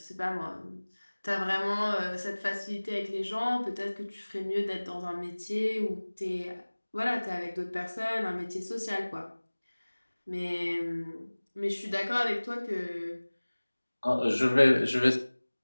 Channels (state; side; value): inverted; both; correlation -1.00